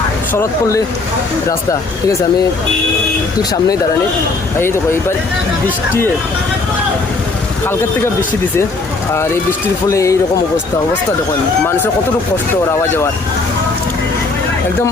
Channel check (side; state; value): right; quieter; 3.6 dB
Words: শরৎপল্লী রাস্তা, ঠিক আছে, আমি ঠিক সামনেই দাঁড়ানি। এই দেখো এইবার বৃষ্টি, কালকের থেকে বৃষ্টি দিছে, আর এই বৃষ্টির ফলে এইরকম অবস্থা দেখুন, মানুষের কতটুকু কষ্ট ওর আওয়া যাওয়ার। একদম